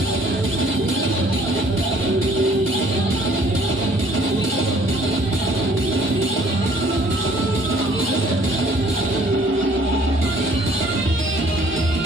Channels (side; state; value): both; normal; correlation 0.58